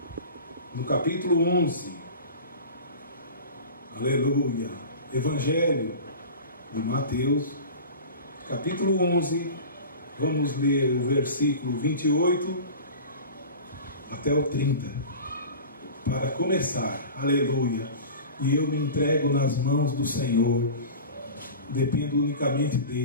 no capítulo 11. Aleluia. Evangelho de Mateus, capítulo 11. Vamos ler o versículo 28 até o 30. Para começar. Aleluia. E eu me entrego nas mãos do Senhor. Dependo unicamente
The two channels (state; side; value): inverted; both; correlation -0.35